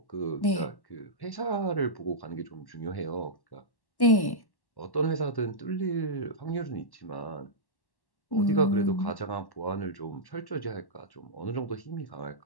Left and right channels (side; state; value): right; late; 1.1 ms